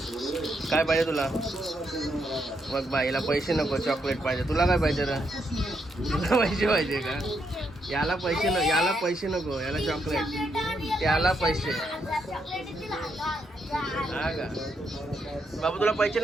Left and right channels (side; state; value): both; normal; correlation 0.78